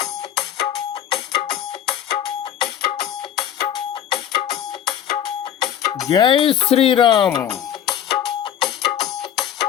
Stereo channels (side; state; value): right; quieter; 9.9 dB